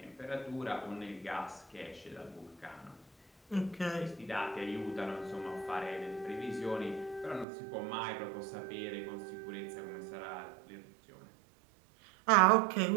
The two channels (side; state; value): left; drops out; at 7.5 s